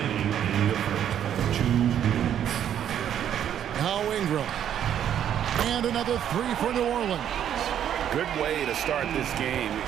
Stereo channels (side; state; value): left; quieter; 9.9 dB